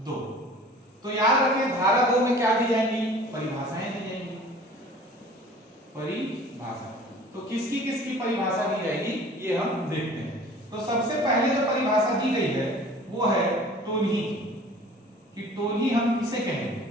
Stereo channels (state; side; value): normal; both; correlation 0.46